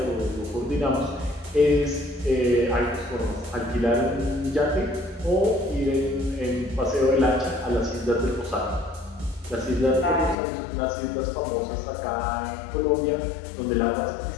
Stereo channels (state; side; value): drops out; right; at 10.4 s